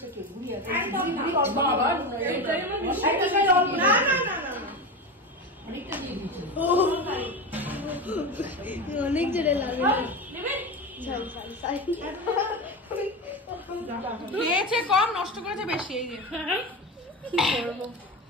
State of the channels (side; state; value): both; normal; correlation 0.22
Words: অনেক জোরে লাগে। খেয়েছে কম, নষ্ট করেছে বেশি। এই যে